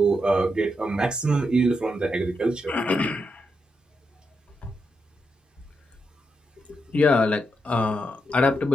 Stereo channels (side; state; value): both; normal; correlation 0.83